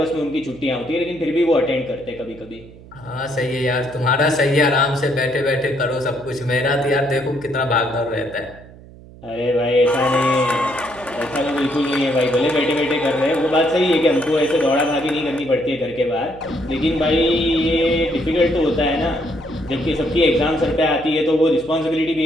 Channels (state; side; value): noise; right; hum, 20 dB below the sound